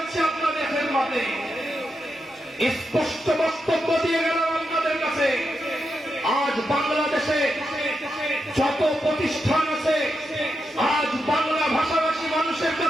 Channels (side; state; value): both; normal; correlation 0.86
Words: আপনাদের খেদমতে, স্পষ্ট বক্তব্য দিয়ে গেলাম আপনাদের কাছে। আজ বাংলাদেশে যত প্রতিষ্ঠান আছে, আজ বাংলা ভাষাভাষী মানুষের